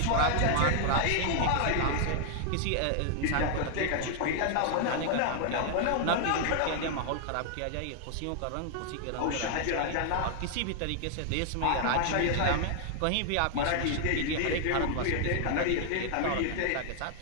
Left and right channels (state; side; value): different; both; correlation 0.00